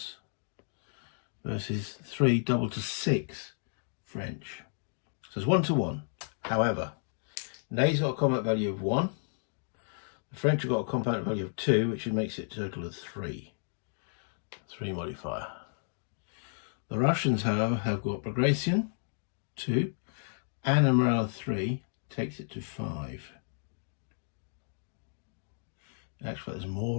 versus 3 double to 6 French. So it's 1 to 1. However, Ney's got a combat value of 1. The French have got a combat value of 2, which makes it a total of 3. 3 modifier. The Russians, however, have got Bagration 2 and a morale 3, takes it to 5. Actually, there's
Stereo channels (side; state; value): right; silent; digital silence